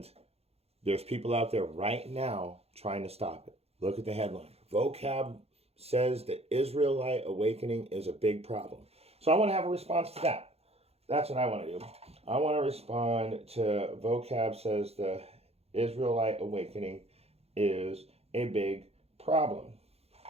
there's people out there right now trying to stop it. Look at the headline. Vocab says the Israelite awakening is a big problem. So I want to have a response to that. That's what I want to do. I want to respond to vocab says the Israelite awakening is a big problem.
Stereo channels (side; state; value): left; late; 0.29 ms